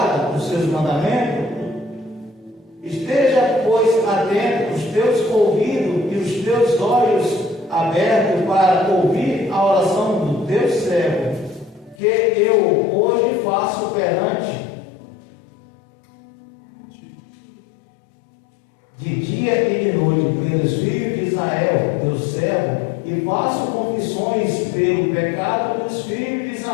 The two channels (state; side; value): drops out; right; at 12.0 s